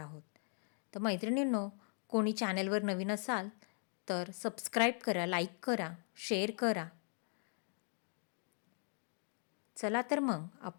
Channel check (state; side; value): silent; right; 51 dB below the other